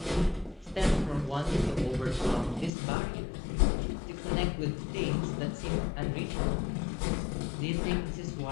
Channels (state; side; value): drops out; right; at 2.7 s